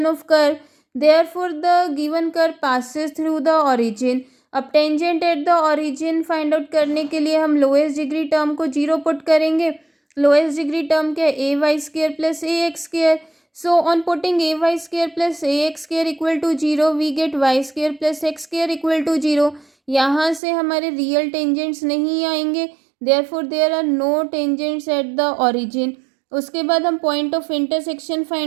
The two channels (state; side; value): drops out; left; at 20.4 s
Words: of curve, therefore the given curve passes through the origin. अब tangent at the origin find out करने के लिए हम lowest degree term को 0 put करेंगे। Lowest degree term क्या है, a y square plus a x square. So on putting a y square plus a x square equal to 0 we get y square plus x square equal to 0। यहाँ से हमारे real tangents नहीं आएंगे, therefore there are no tangents at the origin. उसके बाद हम point of intersection